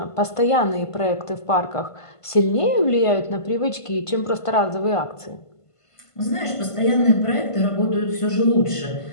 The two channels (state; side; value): late; right; 1.5 ms